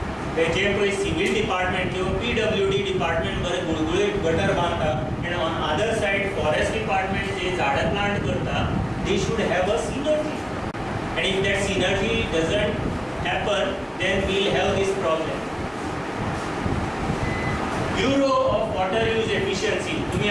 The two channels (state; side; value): identical; both; correlation 1.00